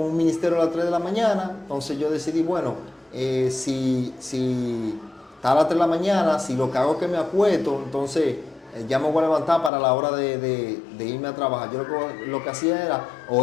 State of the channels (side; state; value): right; drops out; at 9.7 s